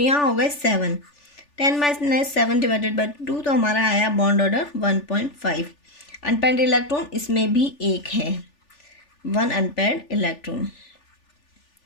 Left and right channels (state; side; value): late; right; 3.4 ms